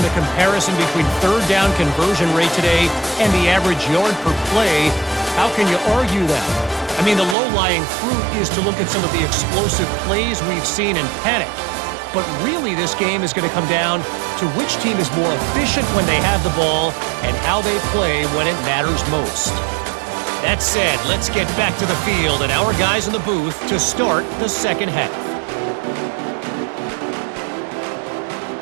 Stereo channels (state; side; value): drops out; left; at 7.4 s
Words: the comparison between third down conversion rate today and the average yard per play, how can you argue that? I mean, the low-lying fruit is to look at some of the explosive plays we've seen in panic. But really, this game is going to come down to which team is more efficient when they have the ball and how they play when it matters most. That said, let's get back to the field and our guys in the booth to start the second half.